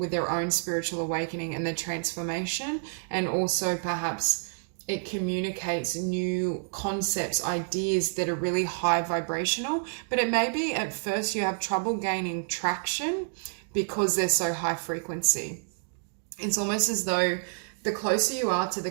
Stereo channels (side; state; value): left; silent; digital silence